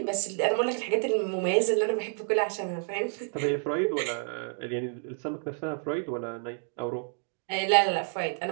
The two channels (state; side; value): silent; left; 58 dB below the other